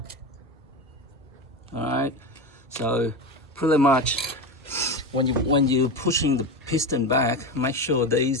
All right. So pretty much, when you're pushing the piston back, make sure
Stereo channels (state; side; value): normal; both; correlation 0.20